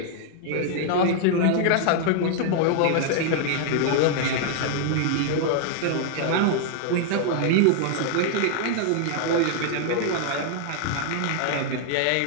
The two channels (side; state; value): both; different; correlation 0.00